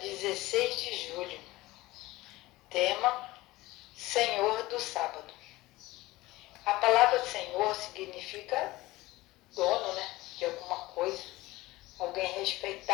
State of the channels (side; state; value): right; quieter; 19.0 dB